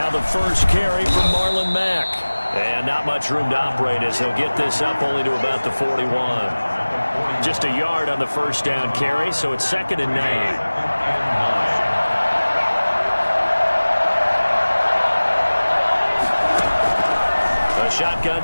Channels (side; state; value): both; inverted; correlation -1.00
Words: the first carry from Marlon Mack. And not much room to operate as he'll get this up only to about the 41. Just a yard on the first down carry, so it's 2nd and 9. Shotgun